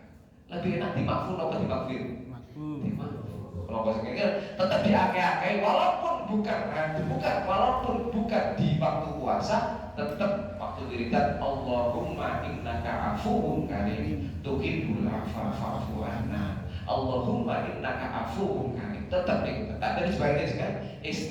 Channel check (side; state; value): both; identical; correlation 1.00